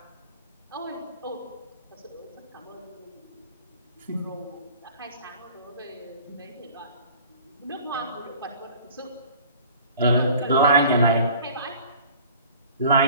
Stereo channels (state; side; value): inverted; both; correlation -0.47